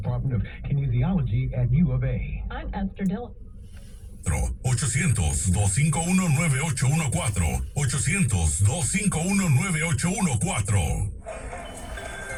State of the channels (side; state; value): both; identical; correlation 1.00